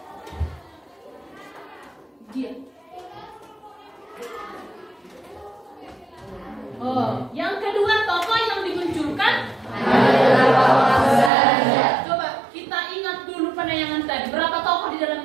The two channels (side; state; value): left; drops out; at 11.3 s